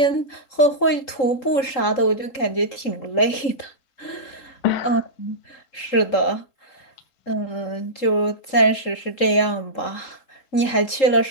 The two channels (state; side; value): late; right; 3.8 ms